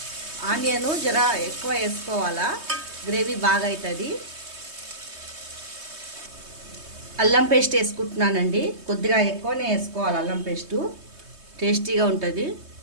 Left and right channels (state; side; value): late; left; 3.2 ms